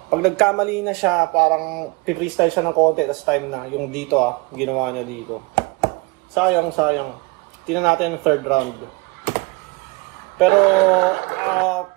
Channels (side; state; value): left; quieter; 26.8 dB